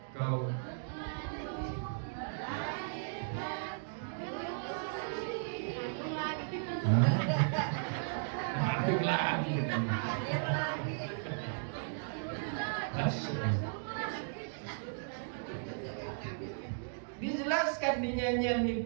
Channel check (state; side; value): silent; left; digital silence